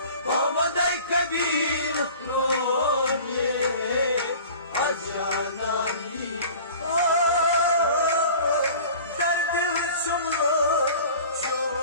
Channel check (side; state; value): both; inverted; correlation -0.43